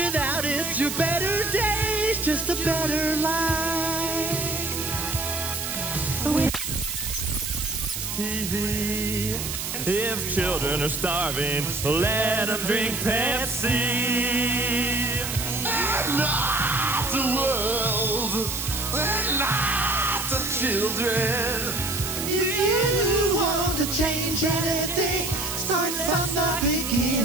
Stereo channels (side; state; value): right; noise; hiss, 4 dB below the sound